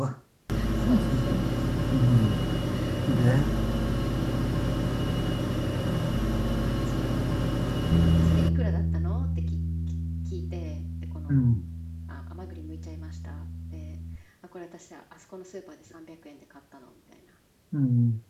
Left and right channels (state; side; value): identical; both; correlation 1.00